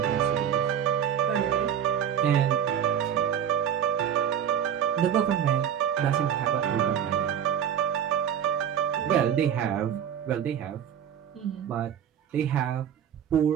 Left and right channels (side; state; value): left; quieter; 9.1 dB